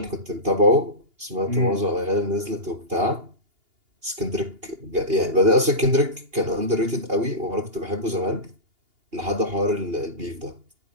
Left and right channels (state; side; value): late; left; 2.8 ms